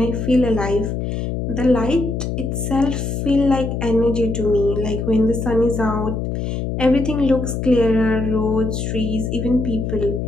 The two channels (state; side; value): noise; left; hum, 3 dB below the sound